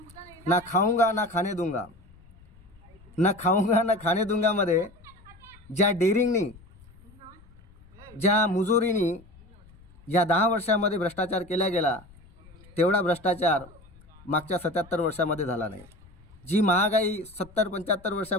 ना खाऊंगा ना खाने दूंगा। ना खाऊंगा ना खाने दूंगामध्ये ज्या डेअरिंगनी, ज्या मुजोरीनी या 10 वर्षांमध्ये भ्रष्टाचार केला गेला तेवढा भ्रष्टाचार मागच्या 77 वर्षांमध्ये झाला नाही। जी महागाई 70-75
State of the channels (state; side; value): noise; left; rumble, 25 dB below the sound